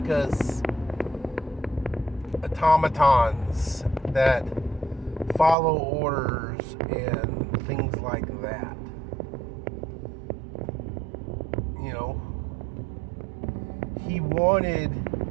us automatons that follow orders and things like that. He wanted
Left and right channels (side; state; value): left; drops out; at 5.6 s